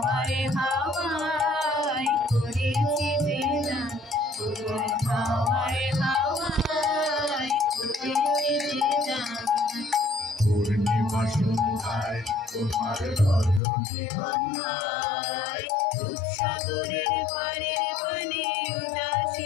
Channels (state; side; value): drops out; right; at 13.6 s